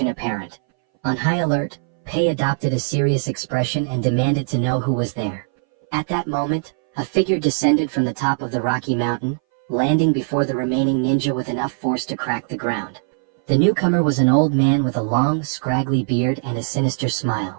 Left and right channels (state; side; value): silent; left; 61 dB below the other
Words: apparent. On high alert, Pei adopted a serious expression and demanded to know who was there. At that moment, a figure descended from the top of the rocky mountain, landing before the remaining ninja with enough force to crack the ground. The newcomer was an old man with a long, scraggly beard and a sinister